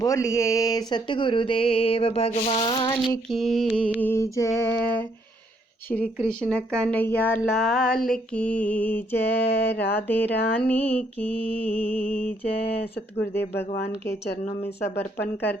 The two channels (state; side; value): normal; both; correlation 0.70